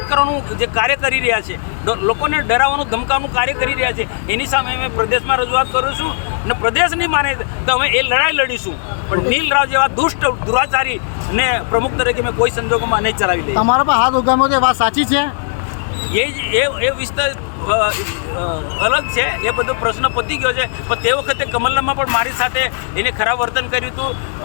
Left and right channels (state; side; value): silent; right; digital silence